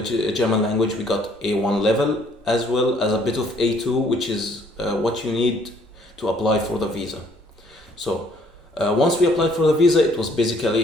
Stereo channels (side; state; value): both; normal; correlation 0.63